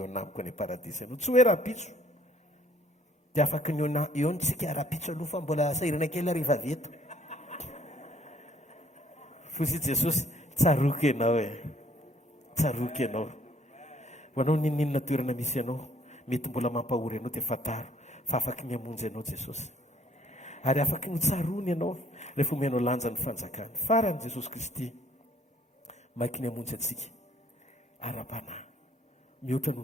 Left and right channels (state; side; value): normal; both; correlation 0.61